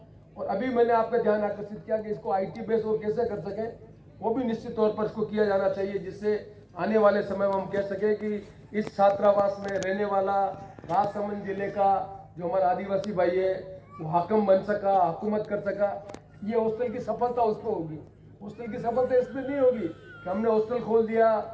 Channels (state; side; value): identical; both; correlation 1.00